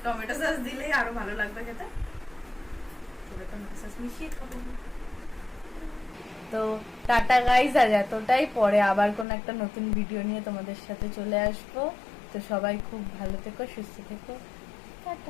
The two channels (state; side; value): drops out; right; at 9.2 s